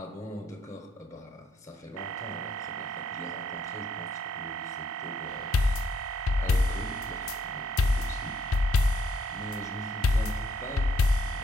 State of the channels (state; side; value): normal; both; correlation 0.71